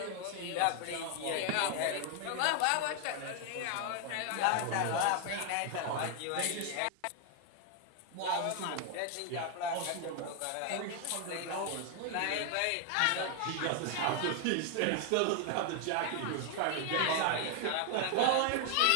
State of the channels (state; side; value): different; both; correlation 0.00